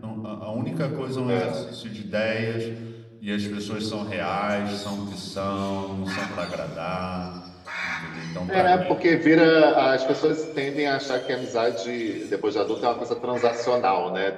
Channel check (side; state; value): both; identical; correlation 1.00